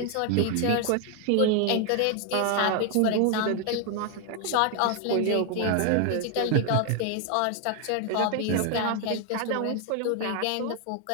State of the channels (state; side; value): different; both; correlation 0.00